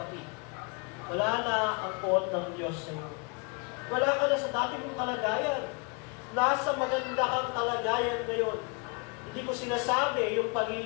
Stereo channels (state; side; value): quieter; right; 32.9 dB